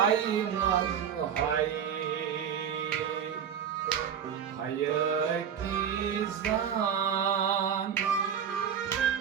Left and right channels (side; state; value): left; quieter; 8.2 dB